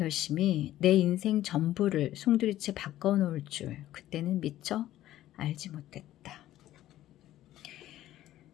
내 인생 전부를 송두리째 바꿔놓을 줄 그때는 미처 알지 못했다.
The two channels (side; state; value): right; quieter; 13.9 dB